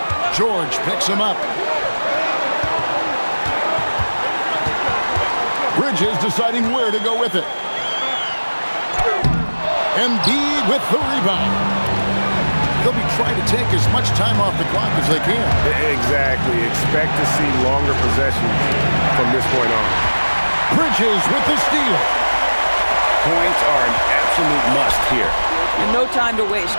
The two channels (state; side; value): inverted; both; correlation -1.00